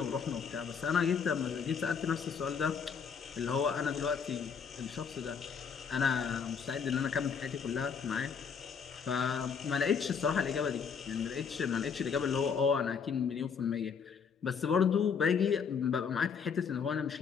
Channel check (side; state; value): right; quieter; 6.4 dB